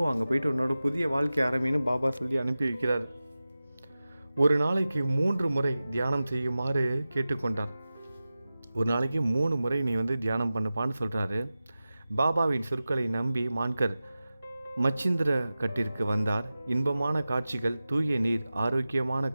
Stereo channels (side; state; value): both; inverted; correlation -0.95